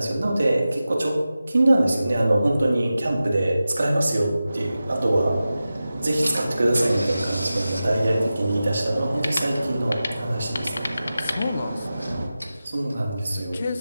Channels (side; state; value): both; inverted; correlation -0.94